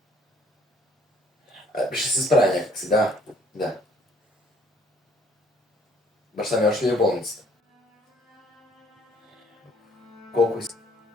Ще се справя някакси, да. Баща ми още ли е в болницата? Колко иска?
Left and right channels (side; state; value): both; normal; correlation 0.61